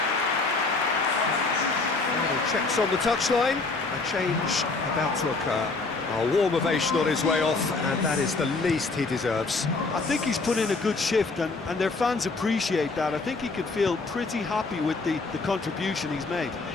Final checks on the touchline. A change about to occur. A warm ovation on his way off, and that is the least he deserves. I think he's put in a good shift, and their fans appreciate that. I think he can feel pretty happy with the contribution he's made.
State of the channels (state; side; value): quieter; right; 3.8 dB